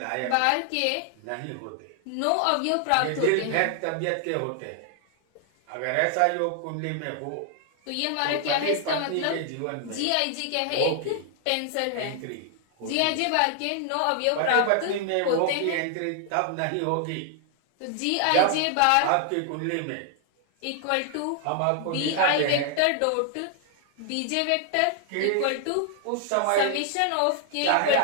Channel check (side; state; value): both; different; correlation 0.00